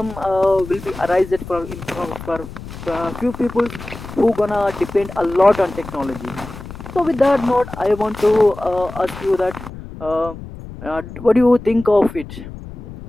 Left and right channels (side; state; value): left; noise; rumble, 13 dB below the sound